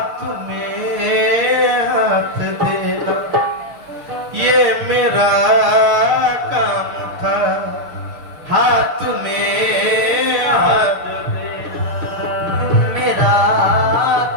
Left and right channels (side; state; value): left; late; 6.6 ms